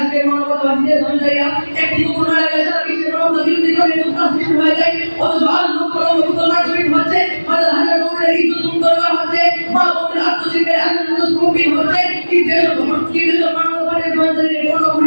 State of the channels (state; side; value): inverted; both; correlation -1.00